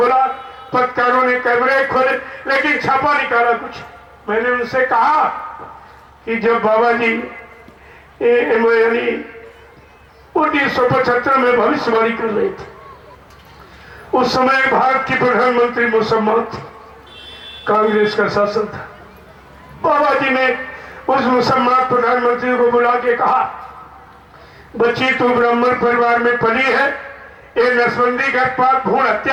पत्रकारों ने कैमरे खोले, लेकिन छापा निकाला कुछ। मैंने उनसे कहा कि जब बाबा जी यानी 1975 में भविष्यवाणी कर रहे थे, उस समय भारत की प्रधानमंत्री मुसम्मत थी, कांग्रेस का शासन था। बाबा जी ने उस मुसम्मत प्रधानमंत्री को बुला के कहा, बच्ची तू ब्राह्मण परिवार में पली है, ये नसबंदी गर्भपात भ्रूण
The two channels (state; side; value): identical; both; correlation 1.00